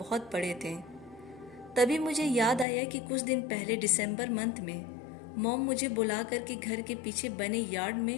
बड़े थे। तभी मुझे याद आया कि कुछ दिन पहले दिसंबर मंथ में मॉम मुझे बुला करके घर के पीछे बने यार्ड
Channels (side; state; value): right; drops out; at 2.7 s